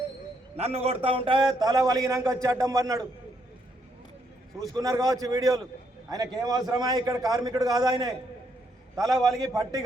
నన్ను కొడతా ఉంటే తల వలిగినాక వచ్చి అడ్డం పడినాడు. చూసుకున్నారు కావచ్చు వీడియోలు. ఆయనకి ఏం అవసరమా? ఇక్కడ కార్మికుడు కాదు ఆయనే. తల వలిగి పట్టి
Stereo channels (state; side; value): normal; both; correlation 0.74